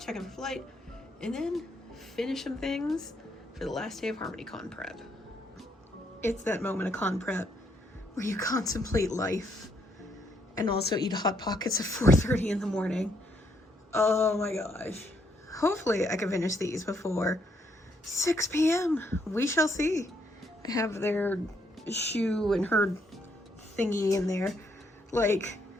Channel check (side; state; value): both; normal; correlation 0.73